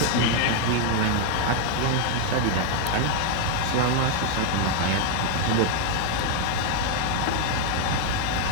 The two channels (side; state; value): both; different; correlation 0.01